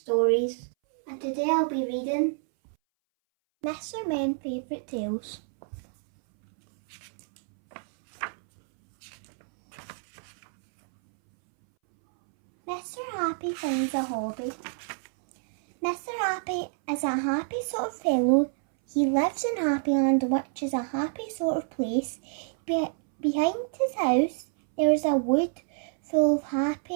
and today I'll be reading Mr. Men's Favourite Tales. Mr. Happy finds a hobby. Mr. Happy is a happy sort of fellow. He lives in Happyland, which is a happy sort of place. Behind his house there is a wood full of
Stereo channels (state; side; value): silent; left; 60 dB below the other